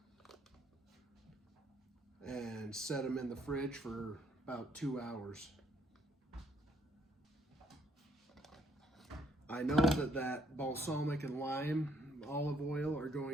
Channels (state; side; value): normal; both; correlation 0.66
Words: and set them in the fridge for about 2 hours. I know that balsamic and lime olive oil are